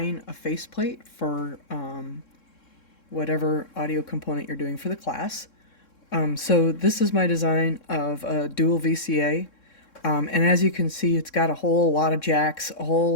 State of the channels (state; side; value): late; right; 3.7 ms